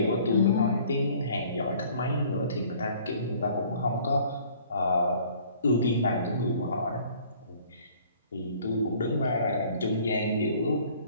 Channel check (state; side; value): inverted; both; correlation -0.54